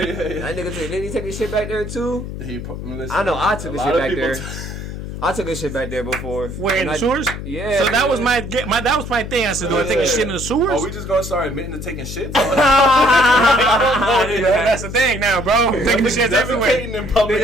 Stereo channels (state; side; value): noise; left; hum, 8 dB below the sound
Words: That nigga didn't he take his shit back there too? I know I took his shit back there. I took this shit back there before. Where, in the sewers? Yeah. So that was my thing. I said, do I take a shit in the sewers? Are we just gonna start admitting to taking shits? That's the thing now, bro. Taking shits everywhere. In public.